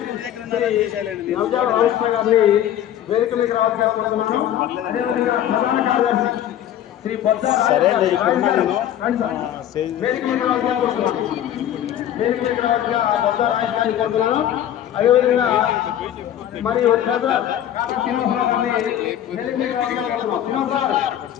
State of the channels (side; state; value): right; quieter; 11.1 dB